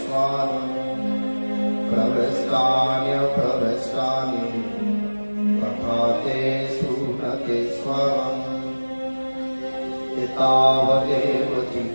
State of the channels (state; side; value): inverted; both; correlation -1.00